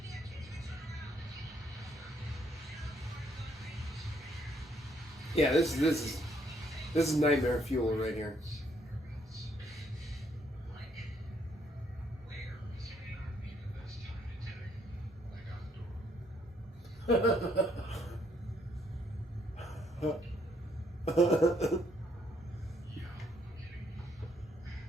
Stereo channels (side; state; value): both; normal; correlation 0.70